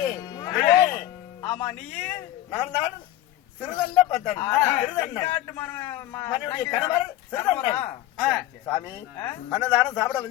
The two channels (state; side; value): quieter; right; 14.2 dB